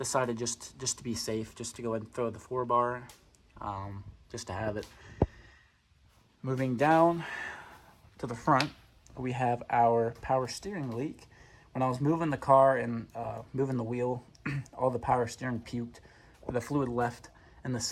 just to be safe, just to go ahead and throw the 4-bar, just to have it. Moving down to the front, we have our power steering leak. When I was moving the car and moving the wheel, all the power steering puked. The fluid left and the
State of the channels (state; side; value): identical; both; correlation 1.00